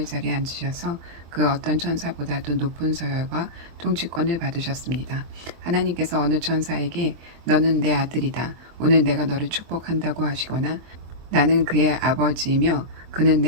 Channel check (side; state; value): left; late; 24 ms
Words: 자리에 앉으셔서 그 어떤 천사보다도 높은 서열과 통치권을 받으셨습니다. 하나님께서 어느 천사에게 너는 내 아들이다. 오늘 내가 너를 축복한다고 하시거나 나는 그의 아버지이며 그는